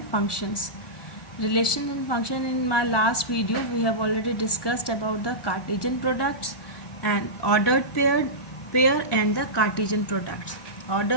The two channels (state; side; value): late; right; 1.1 ms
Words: functions. Relation and function. In my last video, we have already discussed about the Cartesian products and ordered pair and the Cartesian products.